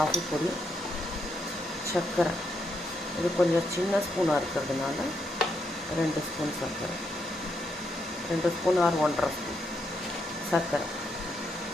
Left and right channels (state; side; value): normal; both; correlation 0.79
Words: பொடி, சர்க்கரை இது கொஞ்சம் சின்ன ஸ்பூனாக இருக்கிறதுனால 2 ஸ்பூன் சர்க்கரை, 2 ஸ்பூன் ஆர் 1.5 ஸ்பூன் சர்க்கரை